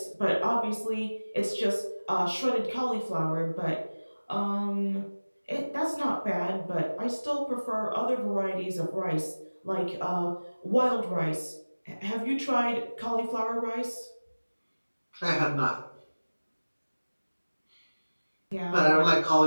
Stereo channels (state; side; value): inverted; both; correlation -1.00